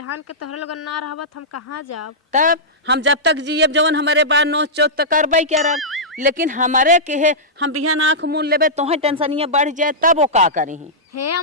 के तोहर लोगन ना रहबत हम कहाँ जाब? तब हम जब तक जियब जवन हमारे बार नोच चोट तो करबे करब, लेकिन हमारे के है हम बिहान आँख मूल लेबे तोहे टेंशनिया बढ़ जाए तब वो का करी। हे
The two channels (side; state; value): both; normal; correlation -0.13